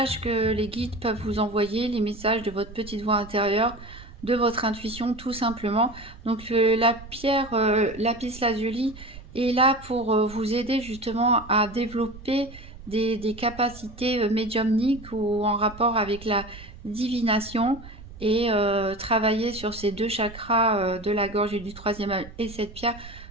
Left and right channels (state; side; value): noise; right; rumble, 17 dB below the sound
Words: les guides peuvent vous envoyer, les messages de votre petite voix intérieure, de votre intuition tout simplement. Donc la pierre Lapis Lazuli est là pour vous aider justement à développer des capacités médiumniques ou en rapport avec la divination et travailler sur ces deux chakras de la gorge et du troisième œil. Et cette pierre